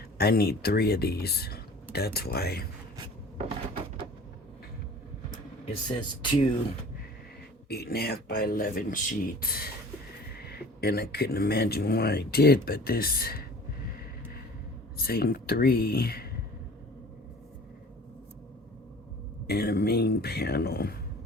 I need 3 of these. That's why it says 2 8.5 by 11 sheets, and I couldn't imagine why I did, but this saying 3 and a main panel.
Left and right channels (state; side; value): normal; both; correlation 0.45